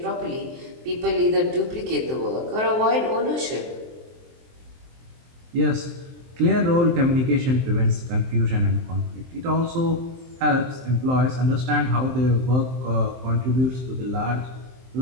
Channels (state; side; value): late; left; 23 ms